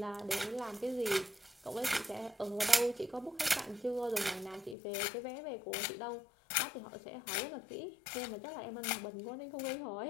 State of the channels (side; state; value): right; drops out; at 4.8 s